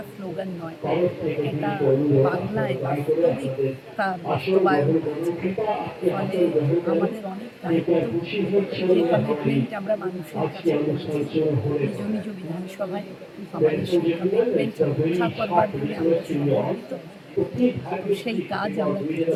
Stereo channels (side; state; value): both; identical; correlation 1.00